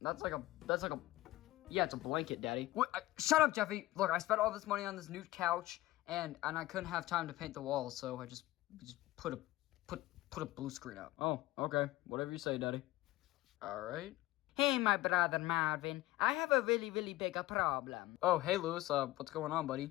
That's like a, yeah, it's a blanket, Daddy. What? Shut up, Jeffy. Look, I spent all this money on this new couch, and I couldn't have time to paint the walls, so I just put a blue screen up. Oh, okay. Whatever you say, Daddy. All right. Hey, my brother Marvin, I have a really, really big problem. Oh, hey, Lewis, what's going on,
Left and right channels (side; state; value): right; quieter; 17.4 dB